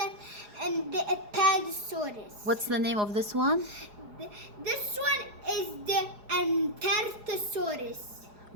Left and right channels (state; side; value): late; left; 4.8 ms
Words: and the Apatosaurus. What's the name of this one? This one is the Antarctosaurus.